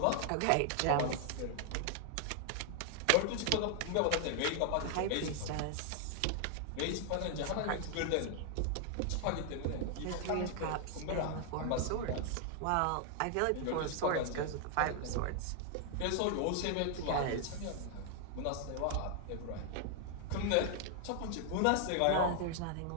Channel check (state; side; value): different; both; correlation 0.00